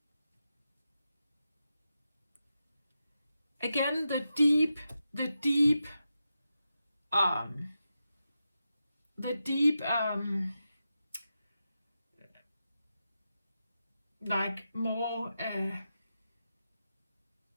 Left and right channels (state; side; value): inverted; both; correlation -0.89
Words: Again, the deep, like more